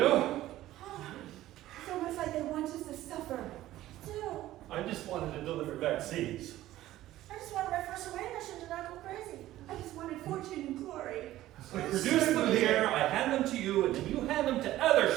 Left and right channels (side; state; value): left; quieter; 14.9 dB